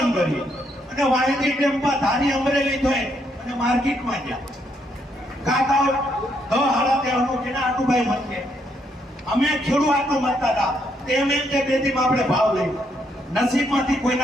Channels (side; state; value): both; normal; correlation 0.75